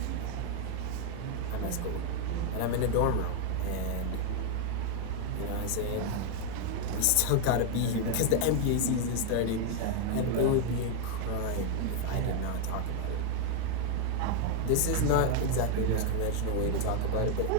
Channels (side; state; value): both; different; correlation 0.00